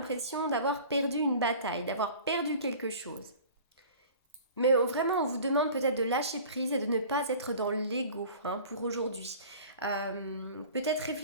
d'avoir perdu une bataille, d'avoir perdu quelque chose. Mais vraiment, on vous demande peut-être de lâcher prise et de ne pas être dans l'ego pour aujourd'hui. Peut-être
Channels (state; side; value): inverted; both; correlation -0.43